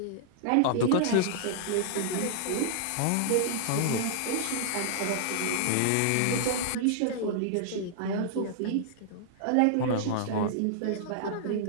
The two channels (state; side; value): different; both; correlation -0.01